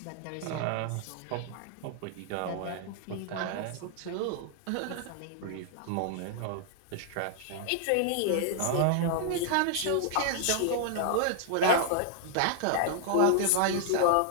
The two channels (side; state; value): both; different; correlation 0.00